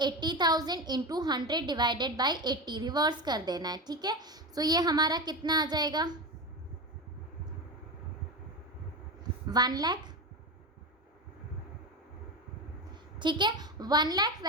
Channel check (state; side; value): normal; both; correlation 0.20